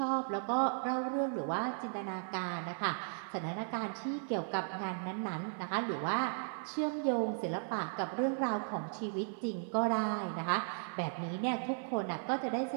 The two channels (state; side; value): silent; left; digital silence